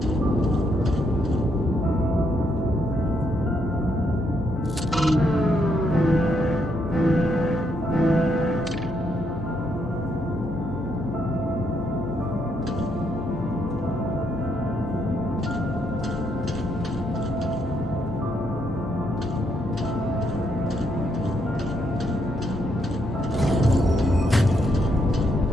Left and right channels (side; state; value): left; noise; hum, 11 dB below the sound